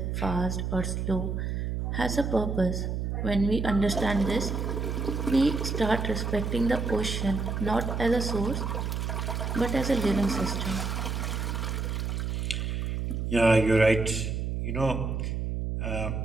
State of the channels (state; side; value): noise; right; hum, 2 dB below the sound